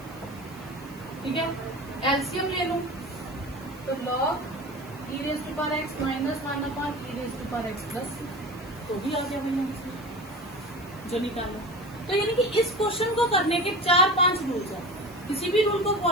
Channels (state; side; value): noise; right; hiss, 23 dB below the sound